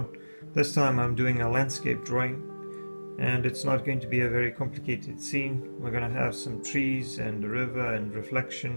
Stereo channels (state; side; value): inverted; both; correlation -1.00